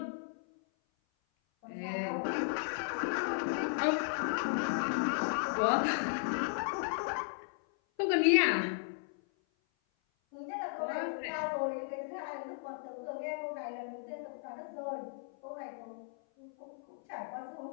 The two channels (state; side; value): silent; right; 54 dB below the other